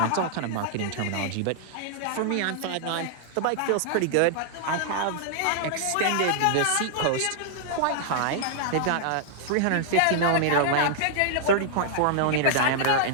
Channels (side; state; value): both; different; correlation -0.01